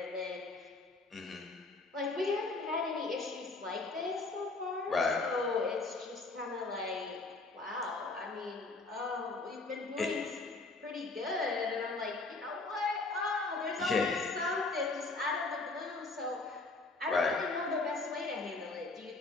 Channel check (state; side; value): quieter; right; 3.4 dB